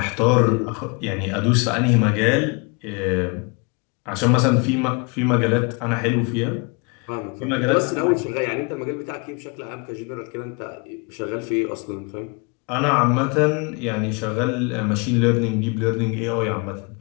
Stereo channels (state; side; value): quieter; right; 31.9 dB